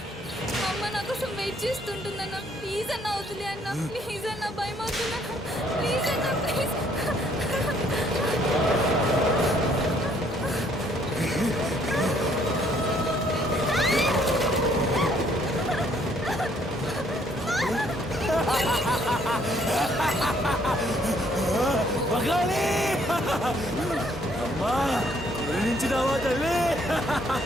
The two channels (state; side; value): normal; both; correlation 0.65